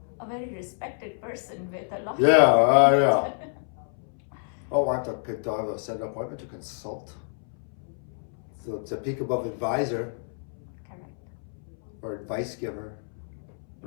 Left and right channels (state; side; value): silent; right; 59 dB below the other